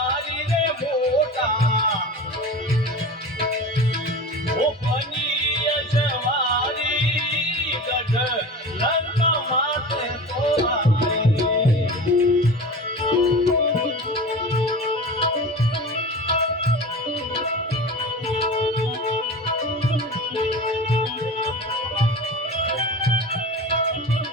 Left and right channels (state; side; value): normal; both; correlation 0.33